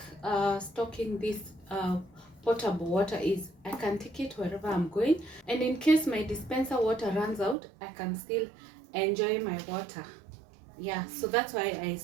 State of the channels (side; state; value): left; drops out; at 7.6 s